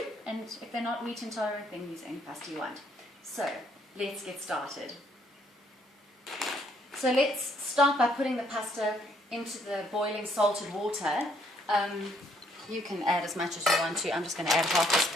And if they're not wheat intolerant, then use any pasta you want. So let's get started. So let's start by putting the pasta into the boiling salted water. You can add as much as you want to. I'm just going to add half this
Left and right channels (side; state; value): both; normal; correlation 0.67